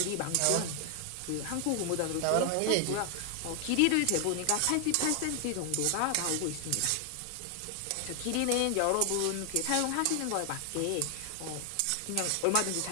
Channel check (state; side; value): different; both; correlation 0.00